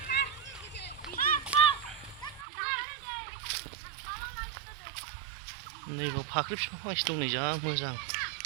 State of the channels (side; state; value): left; drops out; at 2.5 s